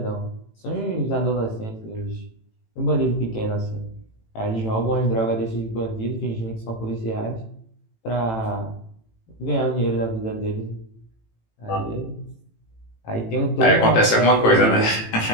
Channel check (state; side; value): late; right; 18 ms